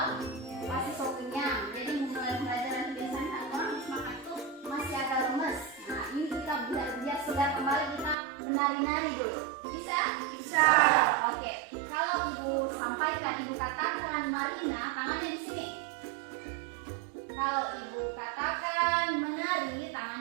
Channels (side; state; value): left; drops out; at 8.2 s